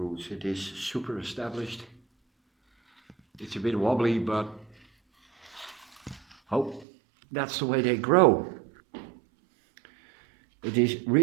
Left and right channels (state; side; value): drops out; left; at 6.9 s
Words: It is super established. It's a bit wobbly, but oh, that's the way they grow. It is